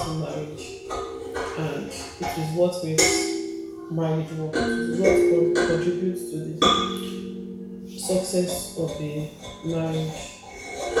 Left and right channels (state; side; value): identical; both; correlation 1.00